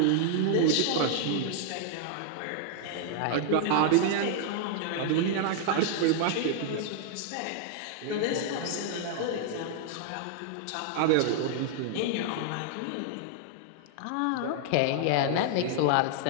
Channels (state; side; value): different; both; correlation -0.01